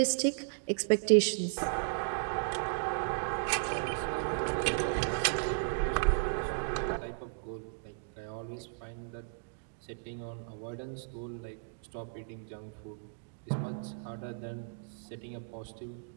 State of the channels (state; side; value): silent; left; digital silence